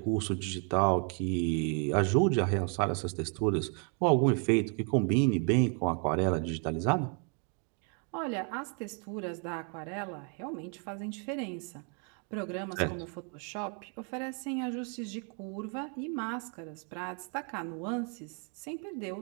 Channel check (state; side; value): quieter; left; 39.7 dB